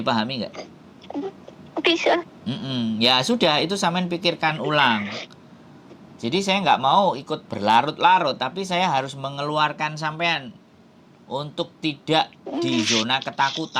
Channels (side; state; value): both; identical; correlation 1.00